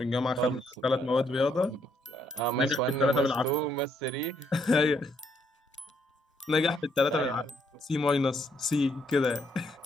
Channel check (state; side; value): normal; both; correlation 0.72